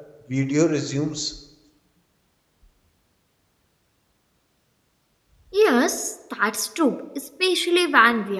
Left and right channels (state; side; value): identical; both; correlation 1.00